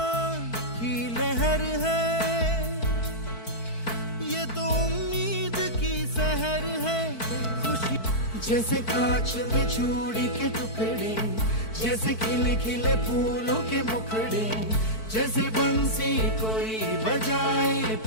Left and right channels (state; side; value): late; right; 4.5 ms